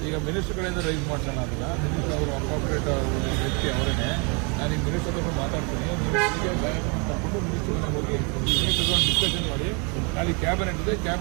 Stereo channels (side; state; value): left; quieter; 33.4 dB